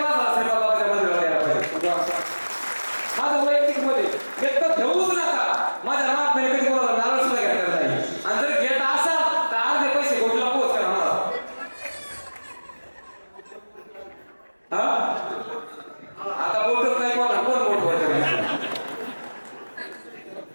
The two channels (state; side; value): inverted; both; correlation -1.00